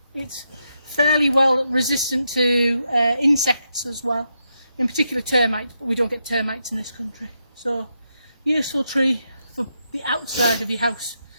It's fairly well resistant to insects as well, in particular termites, but we don't get termites in this country. So useful tree for the outside of your house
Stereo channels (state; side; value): inverted; both; correlation -0.83